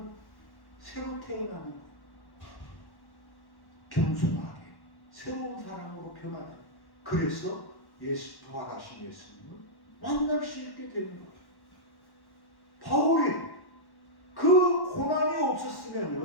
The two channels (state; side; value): late; right; 1.1 ms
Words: 새로 태어나는 거예요. 겸손하게 새로운 사람으로 변하는. 그래서 예수 부활하신 예수님을 만날 수 있게 되는 거예요. 바울이 그 고난이